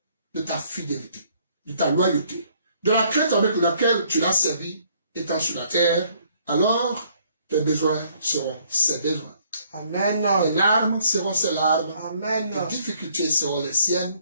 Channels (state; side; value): inverted; both; correlation -0.64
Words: de ta fidélité, de ta loyauté, de la crainte avec laquelle tu l'as servi, étant sur la terre, alors tes besoins seront ses besoins. Amen. Tes larmes seront ses larmes. Amen. Tes difficultés seront les